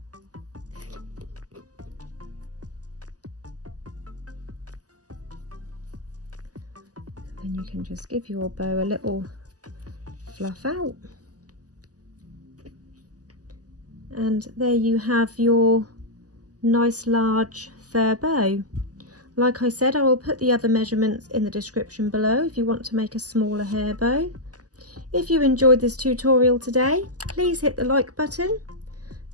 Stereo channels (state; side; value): late; left; 0.67 ms